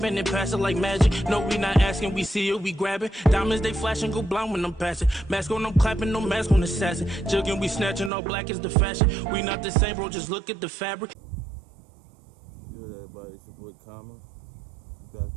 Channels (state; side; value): drops out; left; at 8.1 s